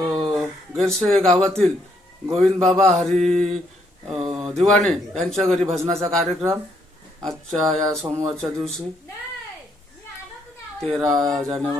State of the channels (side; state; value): both; normal; correlation 0.72